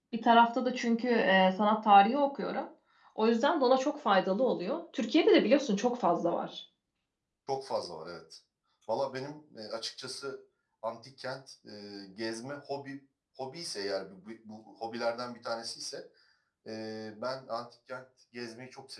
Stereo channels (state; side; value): identical; both; correlation 1.00